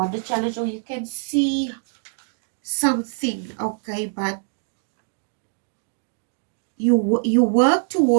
the challenge, or you can see something, okay, but you work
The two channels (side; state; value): left; silent; digital silence